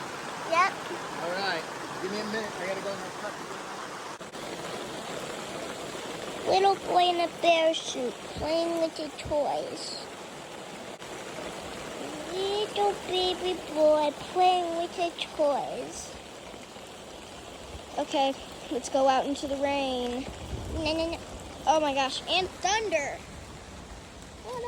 Yep. All right. Give me a minute. I gotta go in my truck. Little boy in a bear suit playing with his toys. Little baby boy playing with his toys. Okay, let's go out into the rain. No. Oh my gosh, and thunder.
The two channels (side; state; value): both; identical; correlation 1.00